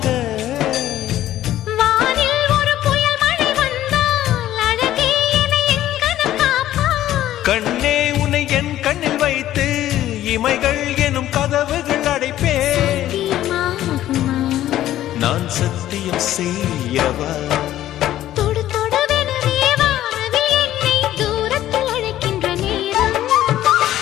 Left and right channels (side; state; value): right; quieter; 13.2 dB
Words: வானில் ஒரு புயல் மழை வந்தால் அழகே என்னை எங்கனம் காப்பாய். கண்ணே உன்னை என் கண்ணில் வைத்து இமைகள் எனும் கதவுகள் அடைப்பேன். நான் சத்தியம் செய்யவா? தொடு தொடுவெனவே வானவில் என்னை தூரத்தில் அழைக்கின்ற நேரம்.